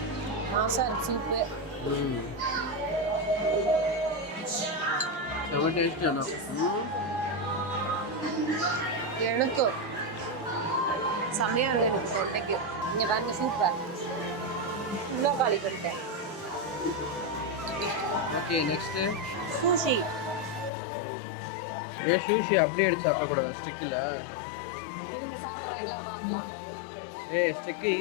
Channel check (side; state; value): right; drops out; at 20.7 s